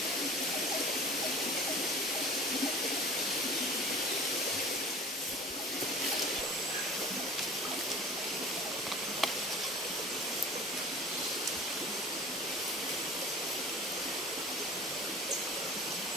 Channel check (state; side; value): normal; both; correlation 0.42